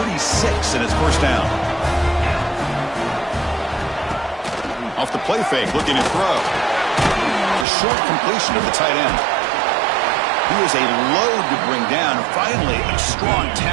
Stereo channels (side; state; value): left; drops out; at 7.7 s